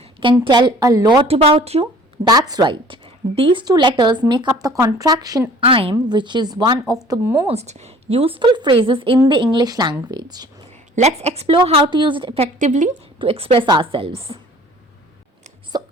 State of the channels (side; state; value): both; normal; correlation 0.50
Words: can tell a lot about you? That's right. These two letters make up the contraction I'm, which is one of the most useful phrases in the English language. Let's explore how to use it effectively to express ourselves. So,